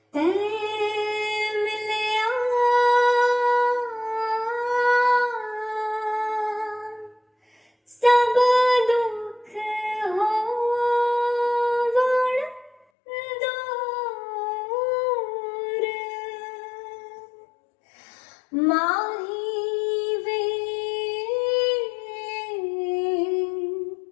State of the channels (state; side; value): drops out; right; at 12.8 s